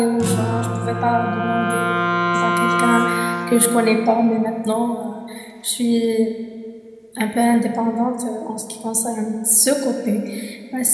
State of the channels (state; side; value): identical; both; correlation 1.00